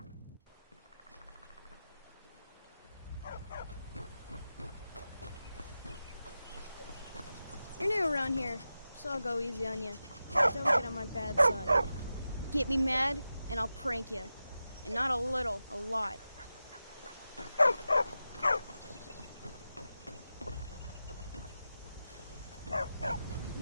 You're new around here, so I'll go easy on you. Don't get on my bad side. Get me mad, and I'll prank you. And not a little, a lot.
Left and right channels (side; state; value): both; inverted; correlation -0.92